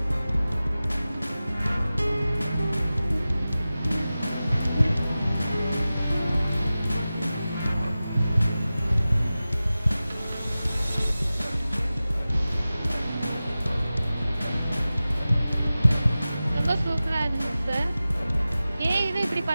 ரொம்ப சூப்பராக இருந்துச்சு சார். ஏன் இதை இப்படி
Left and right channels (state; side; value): inverted; both; correlation -0.96